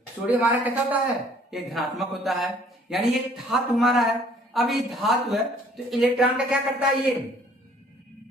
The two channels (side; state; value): both; normal; correlation 0.58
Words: हमारा कैसा होता है? ये धनात्मक होता है। यानी ये धातु हमारा है। अब ये धातु है तो इलेक्ट्रॉन का क्या करता है? ये